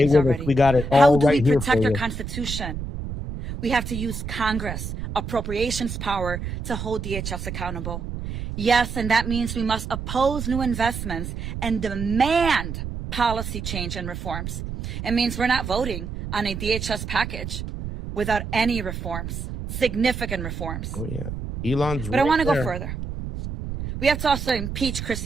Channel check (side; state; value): right; noise; rumble, 6 dB below the sound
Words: already. We got it all How do right we here protect for our you. Constitution? We have to use Congress, appropriations power to hold DHS accountable. Yes, and that means we must oppose new investments and demand policy change and reforms. It means we're not voting on a DHS package without any reforms, significant reforms. Oh, yeah. Elon's But I want to go further. We have to also impeach